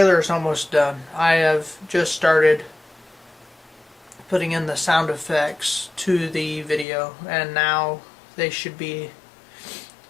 is almost done. I have just started putting in the sound effects to the video, and now they should be.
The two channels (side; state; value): right; drops out; at 6.9 s